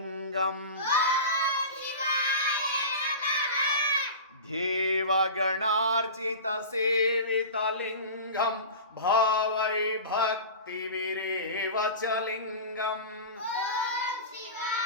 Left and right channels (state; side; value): inverted; both; correlation -0.31